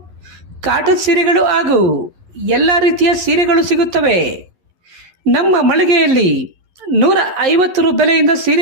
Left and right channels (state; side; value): late; left; 11 ms